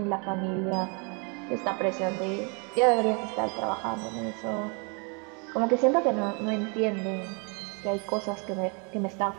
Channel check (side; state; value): left; quieter; 35.2 dB